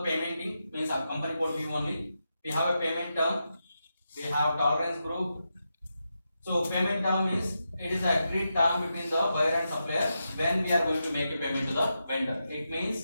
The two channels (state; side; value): inverted; both; correlation -0.87